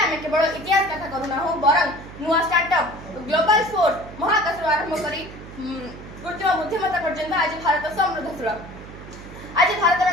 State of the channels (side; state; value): right; noise; hum, 15 dB below the sound